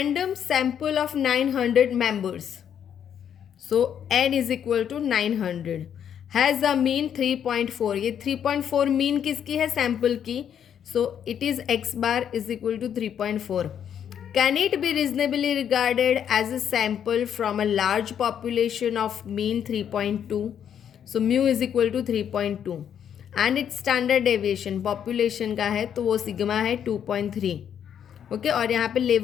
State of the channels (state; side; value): quieter; right; 8.9 dB